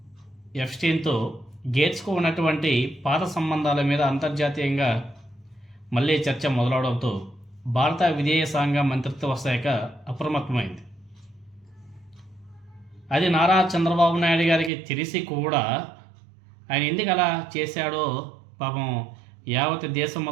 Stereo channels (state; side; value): drops out; left; at 14.7 s